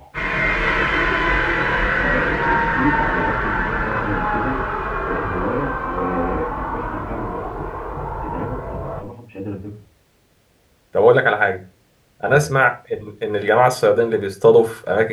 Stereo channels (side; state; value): both; identical; correlation 1.00